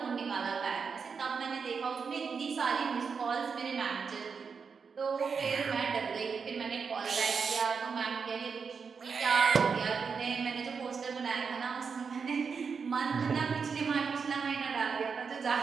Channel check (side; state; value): left; quieter; 5.7 dB